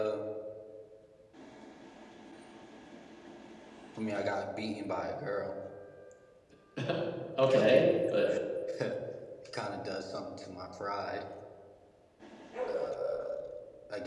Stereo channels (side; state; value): both; identical; correlation 1.00